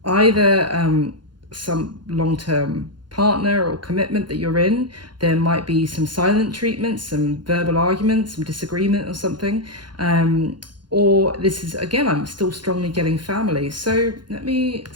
either some long-term partner or commitment that you're in. There might be some silent treatment, some verbal arguments, some disagreement or something. Or this is, again, I'm still strongly getting family. So let me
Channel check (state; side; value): late; left; 0.71 ms